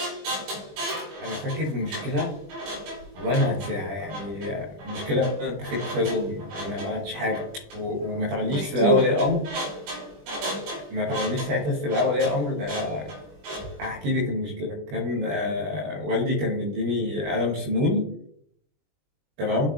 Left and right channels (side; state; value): left; late; 20 ms